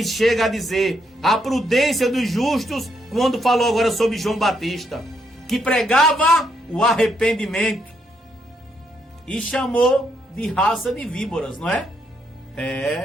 chega a dizer a prudência dos justos, quando falou agora sobre João Batista, que pregava o arrependimento e chamou de raça de víboras, não é?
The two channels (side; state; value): both; normal; correlation 0.76